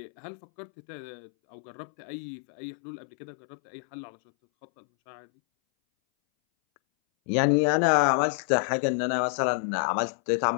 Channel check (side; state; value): right; silent; 59 dB below the other